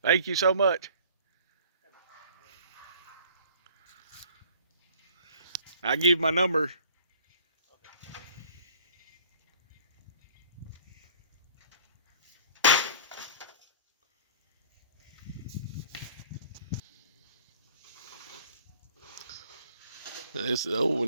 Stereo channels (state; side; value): inverted; both; correlation -0.51